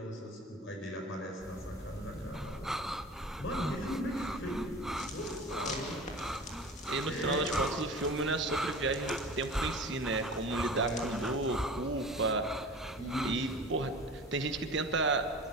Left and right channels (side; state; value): both; normal; correlation 0.38